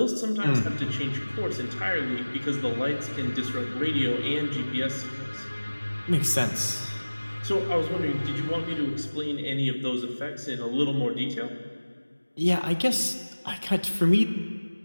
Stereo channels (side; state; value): both; inverted; correlation -1.00